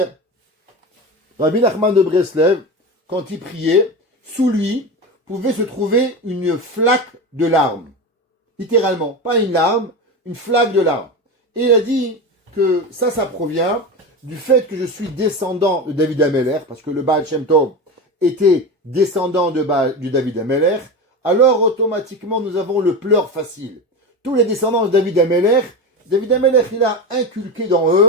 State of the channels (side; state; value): both; normal; correlation 0.23